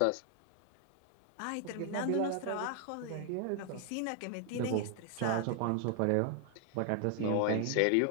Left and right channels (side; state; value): both; different; correlation 0.00